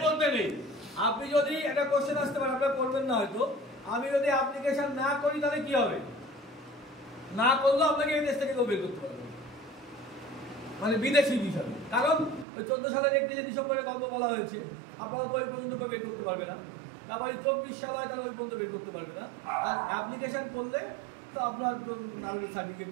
মধ্যে নেই। আপনি যদি একটা কোশ্চেন আসতে পারেন, আপনারা করবেন না হয়তো, আমি যদি অ্যাপ্লিকেশন না করি তাহলে কি হবে? না করলেও আপনাকে এই দেশ থেকে কেউ বের করতে পারবে, মানে বিদেশি হিসাবে। কারণ ওই 14 সালের 31 ডিসেম্বরে গল্প বলা হয়েছে, আপনারা তো ওই পর্যন্ত বের করতে পারবে না। তারপরে 24 সাল হয়, তাহলে ওই পর্যন্ত বের করতে পারবে না। আর অ্যাপ্লিকেশন করলে তো আপনার নাগরিক সার্টিফিকেট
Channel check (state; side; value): drops out; left; at 12.5 s